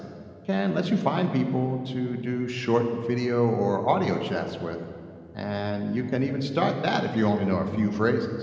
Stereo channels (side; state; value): both; identical; correlation 1.00